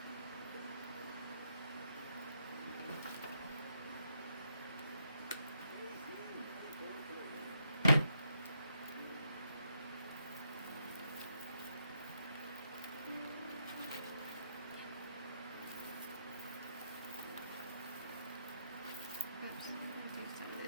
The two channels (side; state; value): both; inverted; correlation -0.77